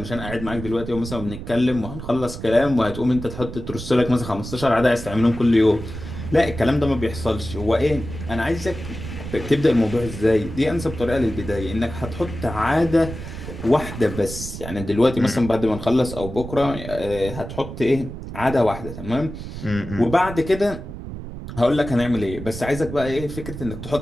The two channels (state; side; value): noise; right; rumble, 9 dB below the sound